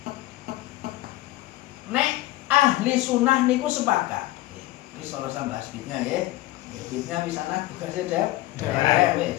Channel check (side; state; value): right; quieter; 17.4 dB